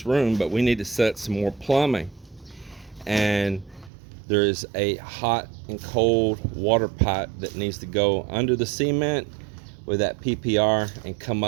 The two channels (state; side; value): drops out; left; at 3.9 s